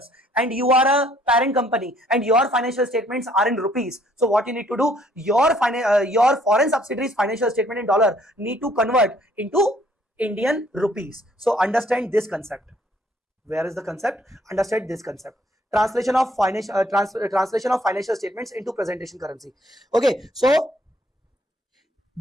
and you are a parent company, and your financial statements are in rupees. So what you need to do? Your foreign subsidiary's financial statement in dollar need to convert into Indian rupees. So understand this concept. Where is the concept? Understand this concept. Translation of financial statements into presentation currency. Okay, so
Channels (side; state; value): both; normal; correlation 0.64